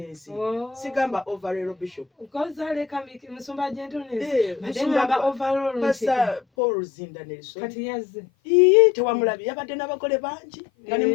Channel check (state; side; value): drops out; right; at 6.4 s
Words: sigamba overall bishop kozaleka musumba gentleness musumba overall basa Paul Zinda Nelson kati yazze tewamulabi yabadde n'abagole bangi nga ne